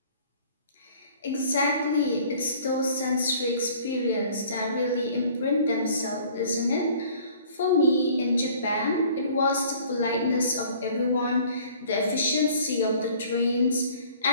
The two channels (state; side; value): inverted; both; correlation -0.53